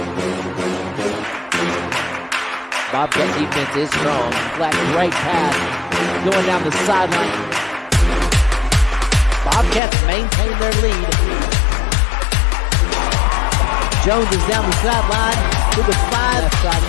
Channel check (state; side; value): drops out; right; at 9.8 s